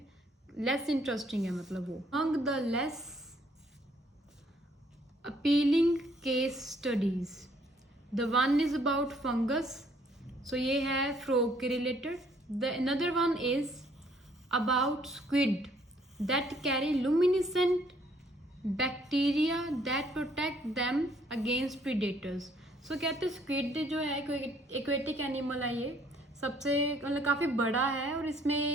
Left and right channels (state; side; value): normal; both; correlation 0.64